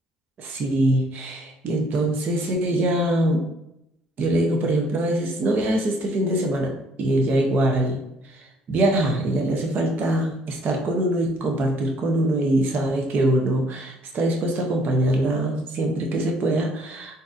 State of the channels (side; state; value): both; normal; correlation 0.63